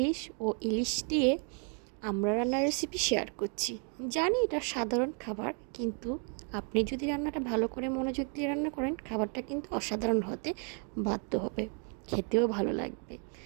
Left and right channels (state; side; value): quieter; left; 40.0 dB